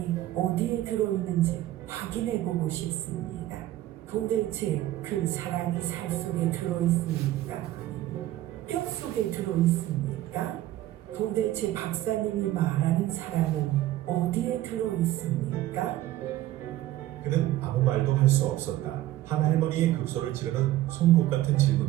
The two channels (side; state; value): left; quieter; 14.8 dB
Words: 어디에 들어있는지 확인해보고 싶습니다. 도대체 그 사랑이 살 속에 들어있습니까? 아니면 뼈 속에 들어있습니까? 도대체 박사님이 말하는 사랑은 어디에 들어있습니까? 그는 아무 말도 할 수 없었다. 한 할머니의 급소를 찌르는 송곳 같은